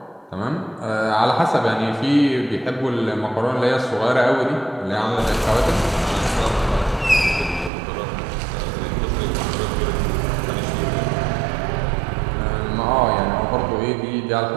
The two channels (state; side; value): drops out; left; at 7.7 s